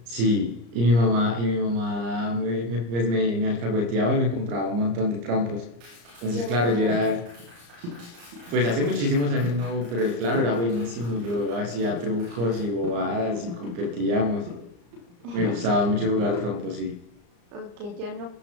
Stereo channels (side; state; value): left; late; 34 ms